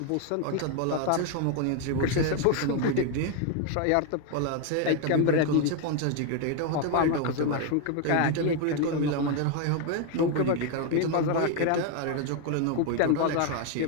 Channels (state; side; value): different; both; correlation 0.01